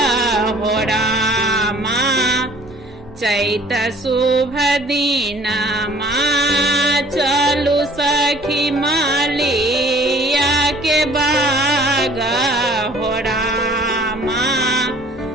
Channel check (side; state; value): both; normal; correlation 0.54